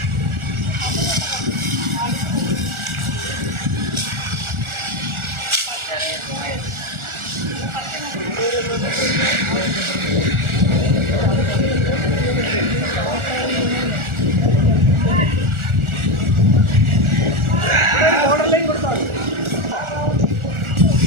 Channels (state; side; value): late; left; 1.4 ms